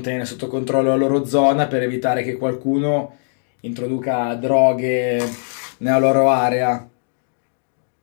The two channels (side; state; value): right; silent; digital silence